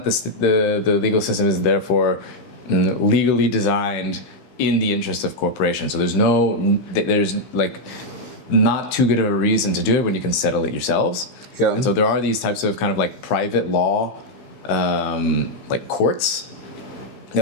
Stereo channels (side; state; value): right; late; 15 ms